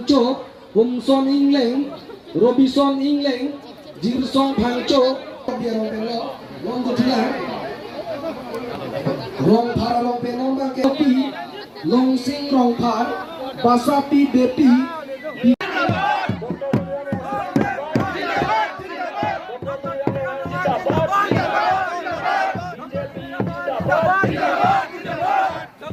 Humson Ingleng, Robinson Ingleng, Jirsong Pangcho, Biarong Penlo, Long Tilang, Rong Paralong Penong Bangkepi, Long Sing Rong Par, Basapi Bepi.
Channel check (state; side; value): identical; both; correlation 1.00